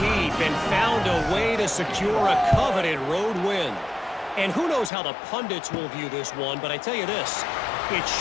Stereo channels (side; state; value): right; drops out; at 4.9 s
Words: deep and found a way to secure a coveted road win. And who knows how the pundits will view this one, but I tell you this, it